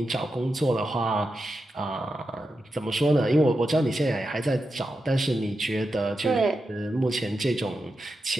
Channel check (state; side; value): normal; both; correlation 0.89